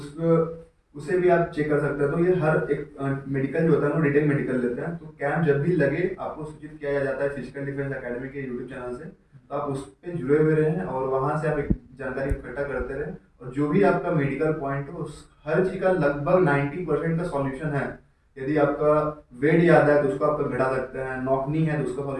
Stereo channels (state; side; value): identical; both; correlation 1.00